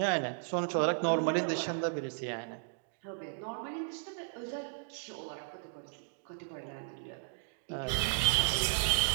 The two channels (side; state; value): left; silent; digital silence